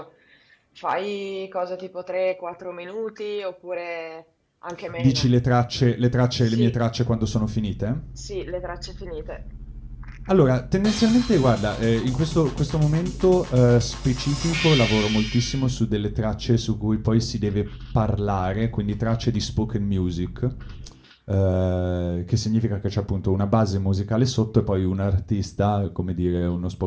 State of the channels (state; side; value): identical; both; correlation 1.00